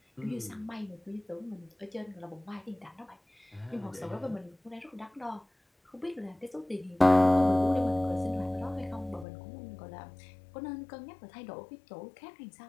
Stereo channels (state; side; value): drops out; right; at 9.2 s